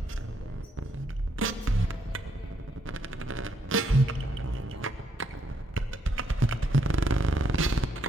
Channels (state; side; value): normal; both; correlation 0.75